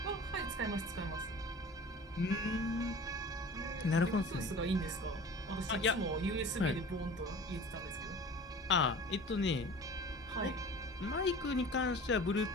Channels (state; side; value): normal; both; correlation 0.40